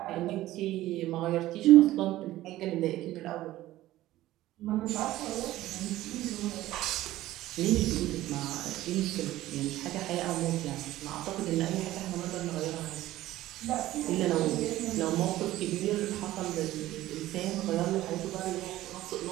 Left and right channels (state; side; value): quieter; left; 15.5 dB